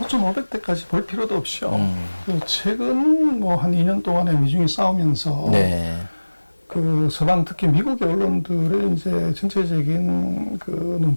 500대까지 볼 필요도 없이요. 그 최근 뭐 한 2년 동안에 미중이 싸우면서 네. 그 서방 특히 미국의 언론들의 이제 전체적인 그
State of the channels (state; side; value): inverted; both; correlation -1.00